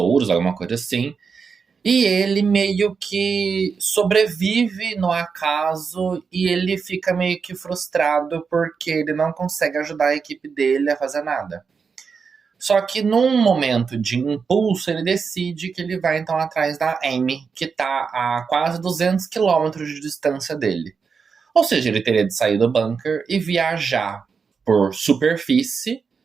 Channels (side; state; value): left; quieter; 5.6 dB